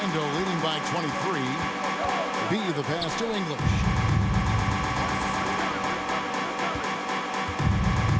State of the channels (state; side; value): identical; both; correlation 1.00